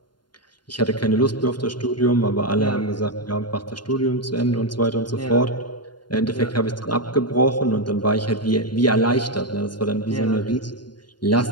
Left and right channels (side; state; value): right; late; 0.71 ms